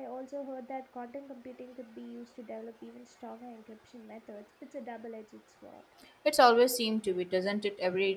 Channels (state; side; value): identical; both; correlation 1.00